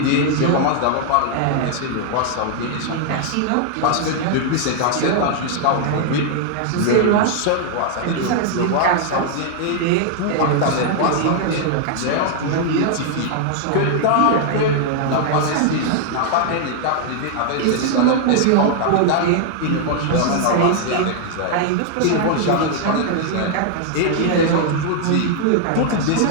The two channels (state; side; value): different; both; correlation 0.00